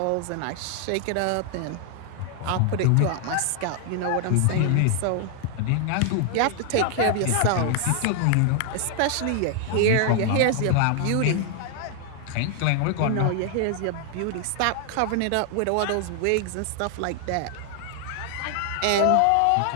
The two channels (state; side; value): different; both; correlation 0.00